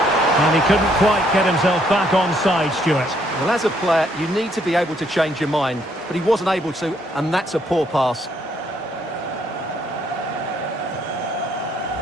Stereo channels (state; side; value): normal; both; correlation 0.69